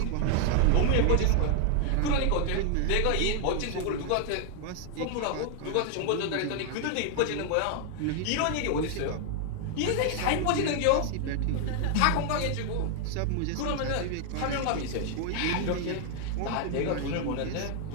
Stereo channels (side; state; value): both; different; correlation 0.00